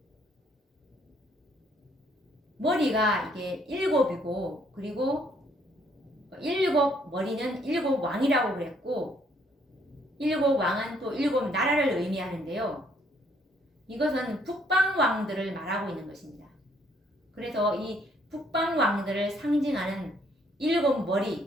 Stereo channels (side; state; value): both; normal; correlation 0.67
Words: 머리가 이게 일곱이고 그리고 일곱 머리는 일곱 왕이라고 그랬고 일곱 왕은 또 일곱 나라를 의미하는데요. 이것은 북방 왕들을 말하고 있는 것입니다. 그래서 이 북방 왕들을 상징하는 일곱